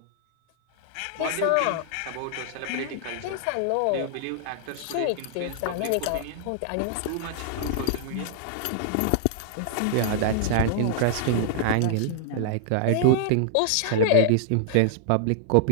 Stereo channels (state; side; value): different; both; correlation -0.01